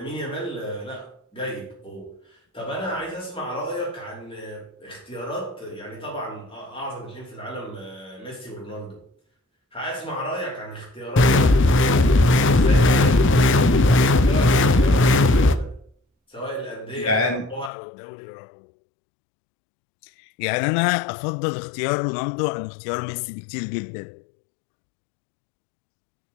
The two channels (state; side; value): drops out; right; at 17.7 s